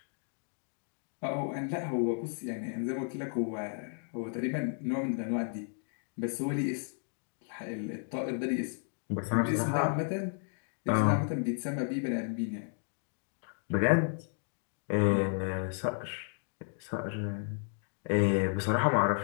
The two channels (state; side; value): silent; right; 56 dB below the other